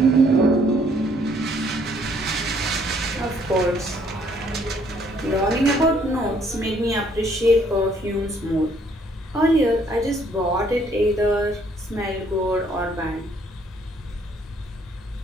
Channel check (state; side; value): normal; both; correlation 0.65